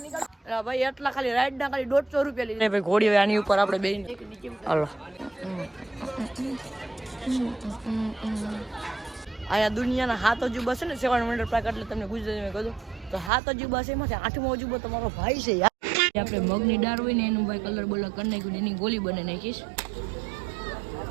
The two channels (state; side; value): drops out; left; at 13.3 s